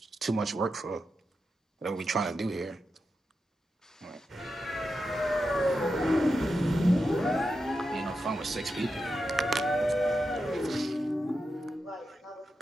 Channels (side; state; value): both; normal; correlation 0.88